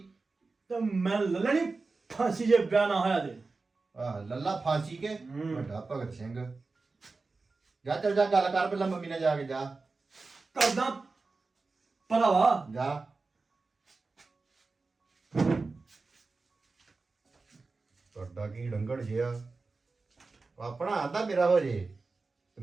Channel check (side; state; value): left; quieter; 3.9 dB